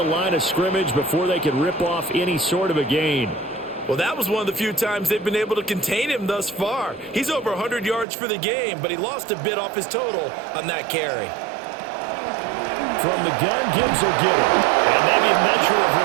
line of scrimmage before they could rip off any sort of a gain. Well, that was one of the few times they've been able to contain him thus far. He's over 100 yards for the game, but he lost a bit off his total on that carry. From the gun, Gibbs will get it. And maybe a measure of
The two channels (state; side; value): drops out; left; at 8.1 s